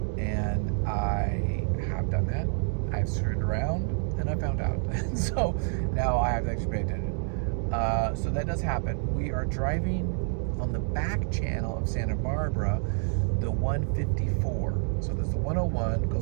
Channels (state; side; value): silent; left; 57 dB below the other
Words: And I have done that. I've screwed around and I found out. So now I have to actually pay attention. So that does happen. We are driving on the back channel of Santa Barbara, the 154. So there's the 101,